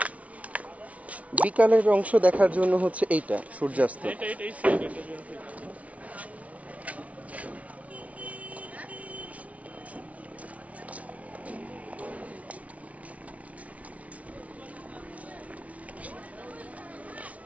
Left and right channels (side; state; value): left; late; 0.067 ms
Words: বিকালের অংশ দেখার জন্য হচ্ছে এইটা সূর্যাস্ত। এটাই সাইড, এটা জন্য